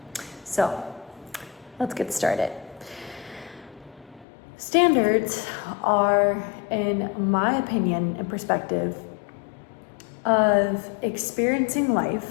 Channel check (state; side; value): drops out; right; at 4.2 s